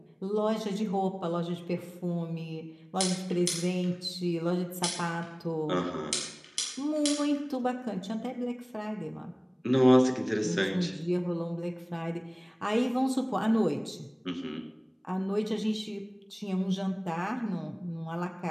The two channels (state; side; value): identical; both; correlation 1.00